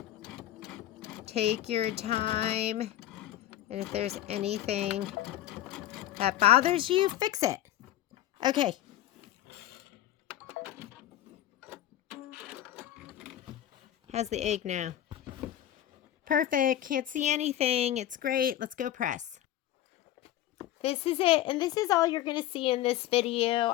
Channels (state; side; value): quieter; right; 12.8 dB